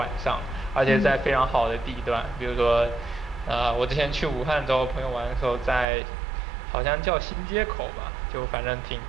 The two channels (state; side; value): drops out; left; at 5.9 s